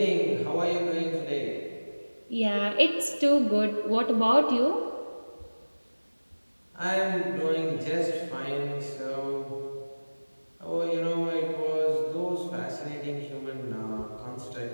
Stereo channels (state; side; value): inverted; both; correlation -1.00